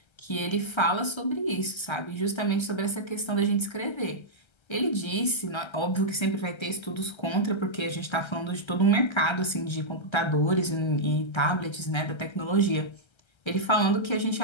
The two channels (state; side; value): late; right; 1.3 ms